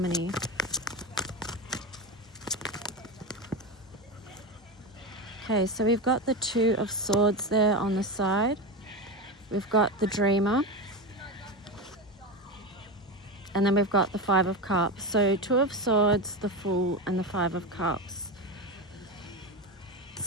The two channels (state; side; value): normal; both; correlation 0.18